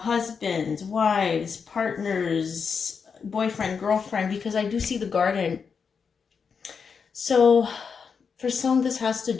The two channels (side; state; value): right; quieter; 5.9 dB